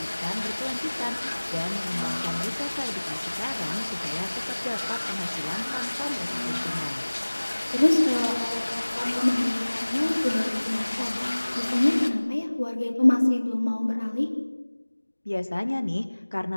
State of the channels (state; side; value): inverted; both; correlation -1.00